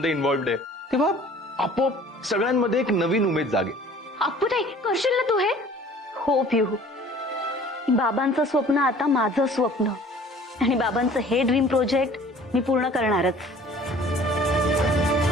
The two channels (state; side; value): normal; both; correlation 0.50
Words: इन्व्हॉल्व्ड आहे, तेव्हा आपोआप सगळ्यांमध्ये एक नवीन उमेद जागेल. अप्पूताई, करशील ना तू हे? हो पिहू, बाबांचं स्वप्न आता माझं स्वप्न आणि बाबांचं हे ड्रीम प्रोजेक्ट मी पूर्ण करणारच.